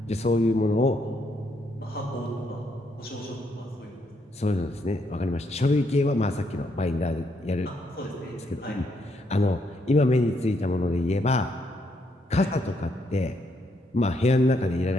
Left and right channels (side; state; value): both; normal; correlation 0.75